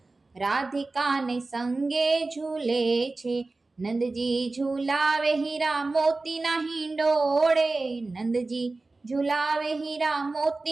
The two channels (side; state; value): left; quieter; 3.4 dB